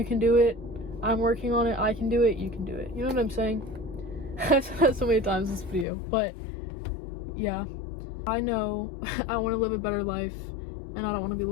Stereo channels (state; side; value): drops out; right; at 5.9 s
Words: can do it. I'm working on it, I can do it, you can do it. You know what I'm saying? I've said that so many times in this video, but yeah, I know I want to live a better life and I don't want to be